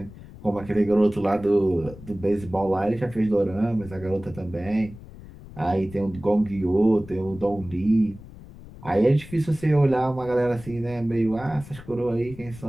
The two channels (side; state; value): left; noise; rumble, 17 dB below the sound